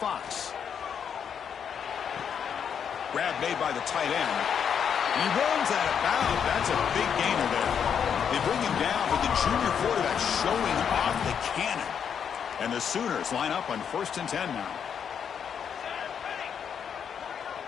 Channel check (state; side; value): quieter; right; 7.7 dB